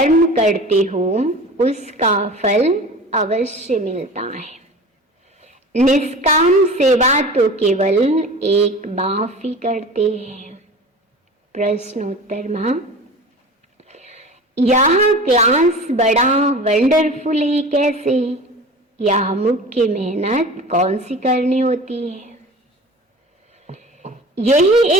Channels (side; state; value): both; normal; correlation 0.37